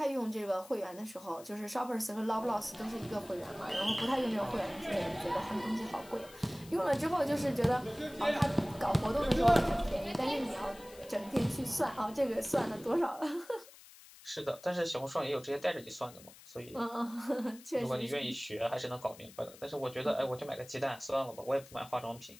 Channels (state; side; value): noise; left; hiss, 20 dB below the sound